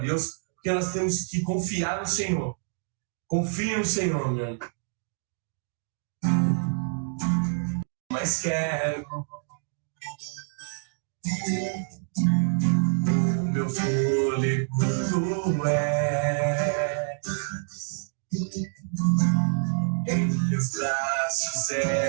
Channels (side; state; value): left; silent; digital silence